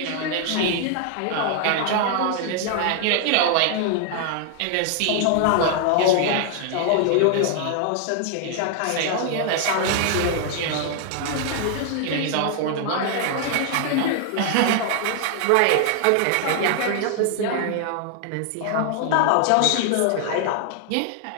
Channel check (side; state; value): both; different; correlation 0.00